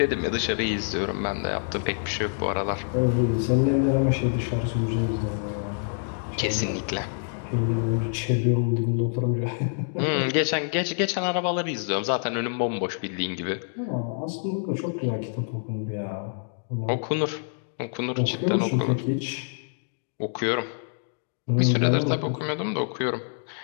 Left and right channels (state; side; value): silent; right; digital silence